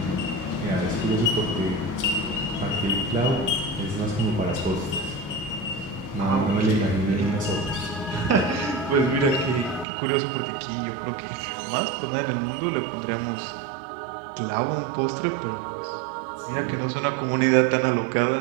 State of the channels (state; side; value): drops out; left; at 9.9 s